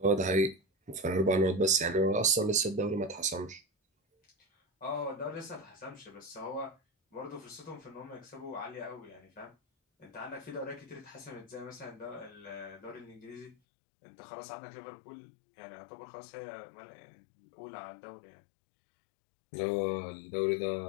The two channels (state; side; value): drops out; right; at 13.6 s